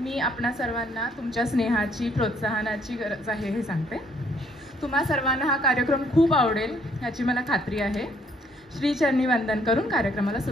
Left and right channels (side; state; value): both; normal; correlation 0.66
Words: आपणा सर्वांना तुमच्या स्नेहाची, प्रोत्साहनाची गरज आहे हे सांगते. तुम्हा सर्वांना हा कार्यक्रम खूप आवडेल याची मला खात्री आहे. श्रीचरणी वंदन करून कार्यक्रमाला